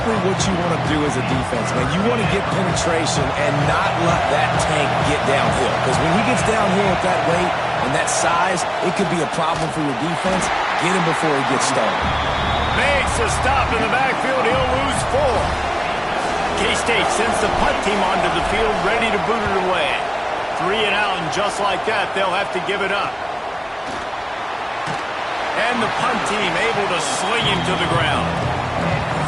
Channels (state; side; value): identical; both; correlation 1.00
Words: what you want to do as a defense, man. You want to get penetration and not let that tank get downhill. Because when he gets downhill at that weight and that size, it could be a problem for your defense. Get him before he gets started. Makes a stop in the backfield. He'll lose 4. K-State sends the punt team onto the field, ready to boot it away. 3 and out, and just like that, they'll have to give it up. And the punt team able to sling him to the ground.